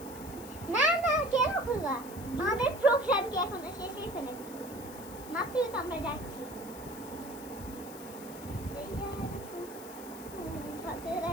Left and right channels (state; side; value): noise; left; hiss, 16 dB below the sound